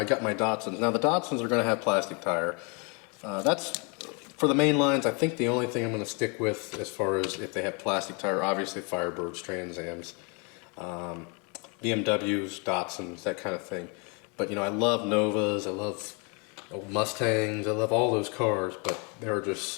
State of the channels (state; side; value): quieter; right; 33.3 dB